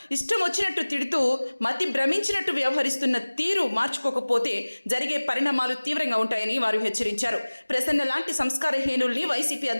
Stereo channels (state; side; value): inverted; both; correlation -1.00